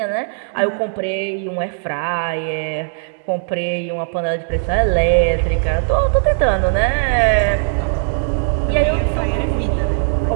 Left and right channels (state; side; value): silent; left; digital silence